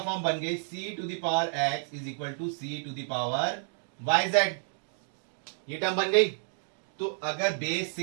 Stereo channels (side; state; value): left; silent; digital silence